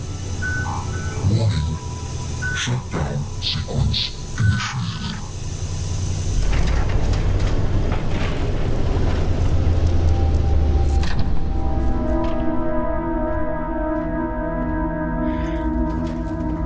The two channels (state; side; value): identical; both; correlation 1.00